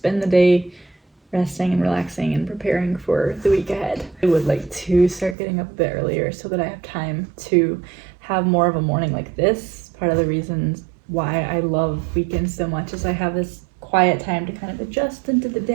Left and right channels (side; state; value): left; drops out; at 5.4 s